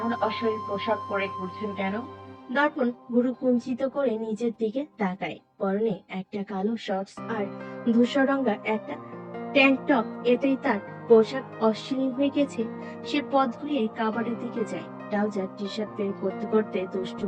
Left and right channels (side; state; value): both; identical; correlation 1.00